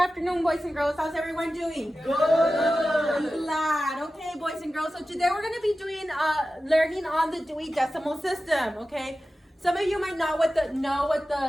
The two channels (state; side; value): normal; both; correlation 0.94